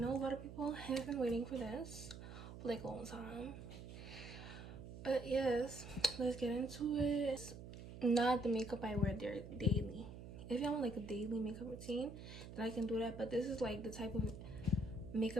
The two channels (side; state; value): right; noise; hum, 12 dB below the sound